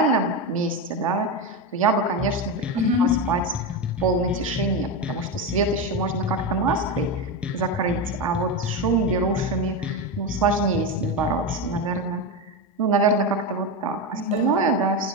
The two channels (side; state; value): both; normal; correlation 0.15